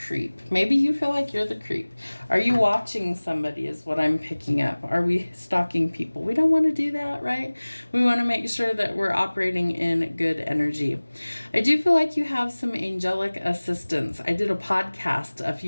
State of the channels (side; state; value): both; inverted; correlation -1.00